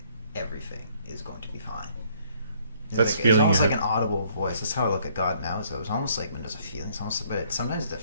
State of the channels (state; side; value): inverted; both; correlation -0.63